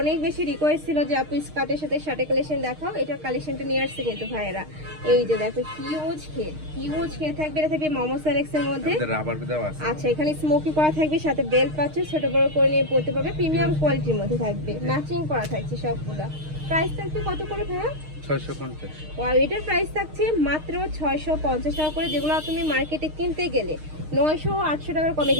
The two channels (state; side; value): late; left; 6.5 ms